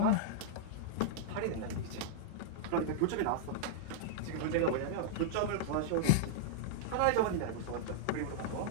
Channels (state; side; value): different; both; correlation -0.02